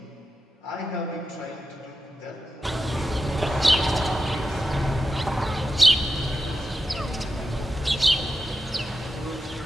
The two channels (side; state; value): both; normal; correlation 0.90